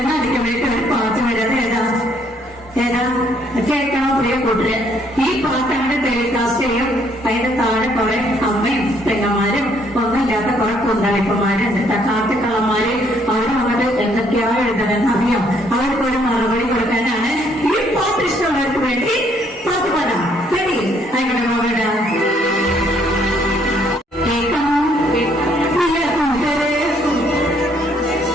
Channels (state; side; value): normal; both; correlation 0.67